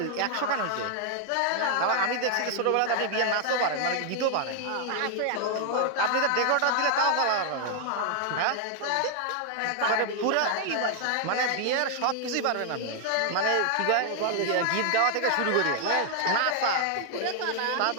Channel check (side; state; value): both; different; correlation 0.00